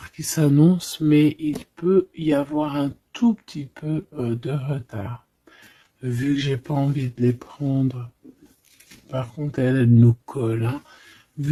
qui s'annonce, mais il peut y avoir un tout petit peu de retard. Vu que j'ai pas envie de les prendre. Par contre, elle nous colle, hein.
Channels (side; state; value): both; identical; correlation 1.00